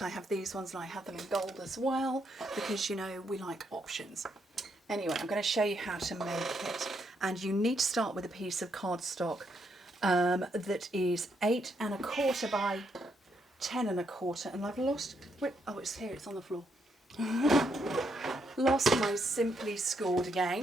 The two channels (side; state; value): both; normal; correlation 0.76